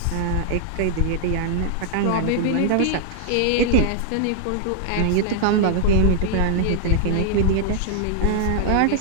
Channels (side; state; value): both; different; correlation 0.00